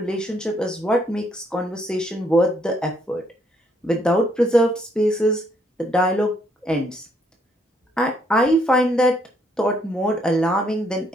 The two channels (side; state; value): both; normal; correlation 0.70